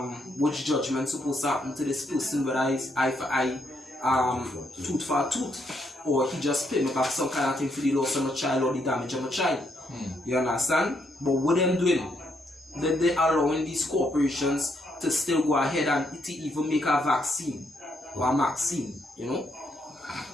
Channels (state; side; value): normal; both; correlation 0.76